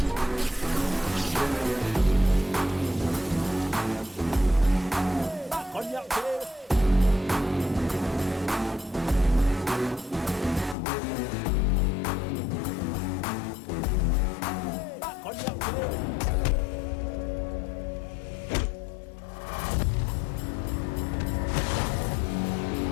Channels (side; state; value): right; drops out; at 10.8 s